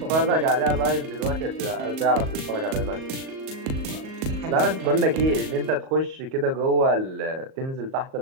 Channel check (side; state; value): left; late; 38 ms